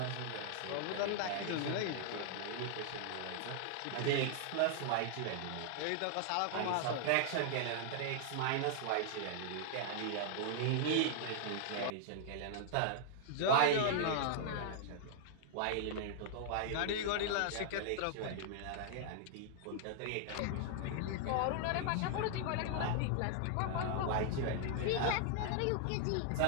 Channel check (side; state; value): both; different; correlation 0.00